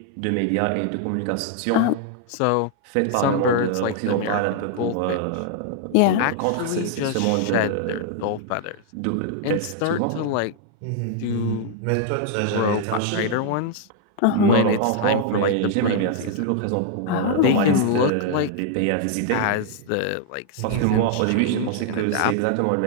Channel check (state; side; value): different; both; correlation 0.00